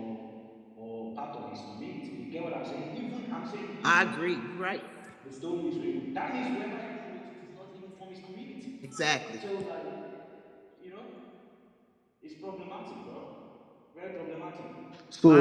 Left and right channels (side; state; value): both; identical; correlation 1.00